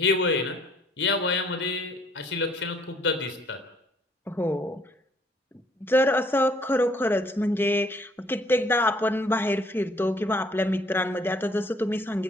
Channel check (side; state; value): both; normal; correlation 0.62